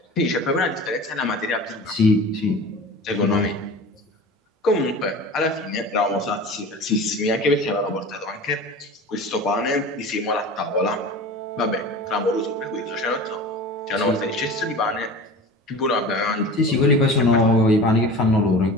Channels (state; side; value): normal; both; correlation 0.36